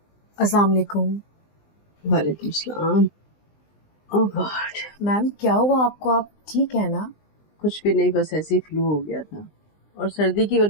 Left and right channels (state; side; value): late; right; 20 ms